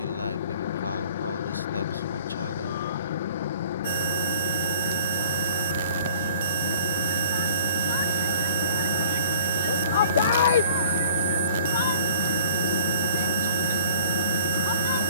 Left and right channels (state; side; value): inverted; both; correlation -0.49